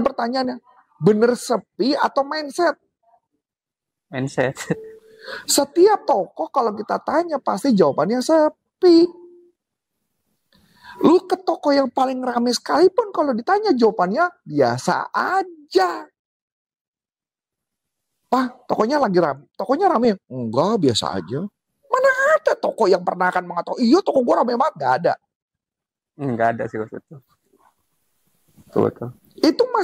pertanyaannya, bener sepi atau mindset? Mindset. Setiap toko kalau kita tanya pasti jawabannya sepi. Lu ke toko yang paling ramai sekalipun kalau ditanya jawabannya biasa aja. Pak, tokonya lagi ramai. Tokonya ramai? Enggak, biasa aja. Mana ada toko yang pernah akan mengatakan, iya toko gua ramai banget? Gak ada. Enggak ada sih Coach. Betul. Itu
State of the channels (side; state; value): both; identical; correlation 1.00